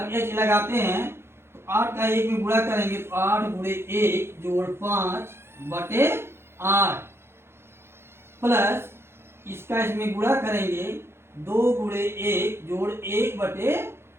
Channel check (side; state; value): left; late; 0.12 ms